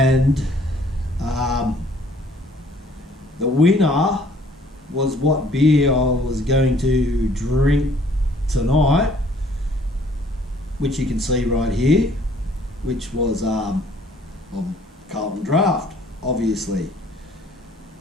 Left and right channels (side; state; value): both; normal; correlation 0.59